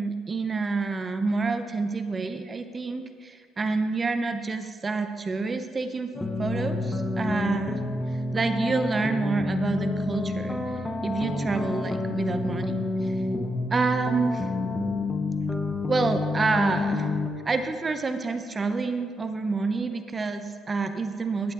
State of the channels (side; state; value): both; normal; correlation 0.85